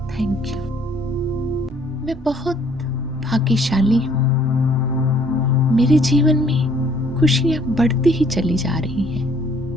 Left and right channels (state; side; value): normal; both; correlation 0.61